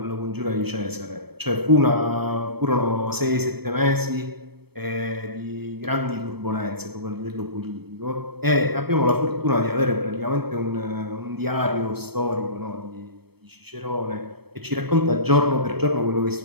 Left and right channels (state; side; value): late; left; 0.97 ms